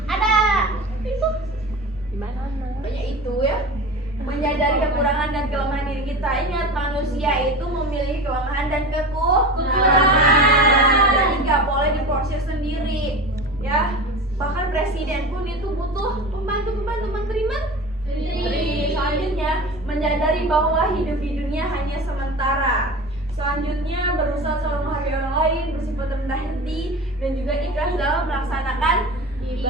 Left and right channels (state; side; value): normal; both; correlation 0.32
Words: Ada. Itu gimana? Banyak itu ya. Menyadari kekurangan dan kelemahan diri kita. Ingat, manusia itu memiliki kelemahan dan kekurangan. Jadi nggak boleh diporsir sendiri ya. Bahkan presiden pun itu butuh pembantu menteri. Selanjutnya, menyadari bahwa hidup di dunia hanya sementara. Selanjutnya, berusaha selalu menghargai orang lain, bersifat rendah hati, dan juga ikhlas dalam melaksanakan